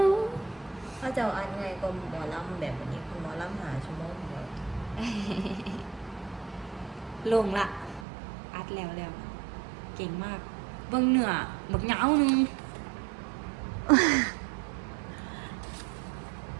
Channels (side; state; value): left; drops out; at 8.1 s